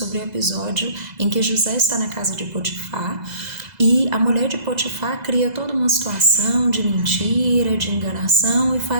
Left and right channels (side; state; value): left; late; 2.0 ms